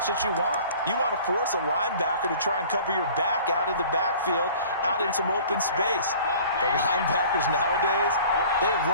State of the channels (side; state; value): both; inverted; correlation -0.47